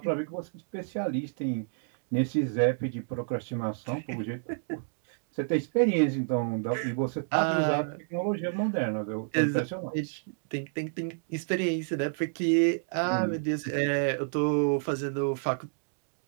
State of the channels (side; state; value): left; silent; digital silence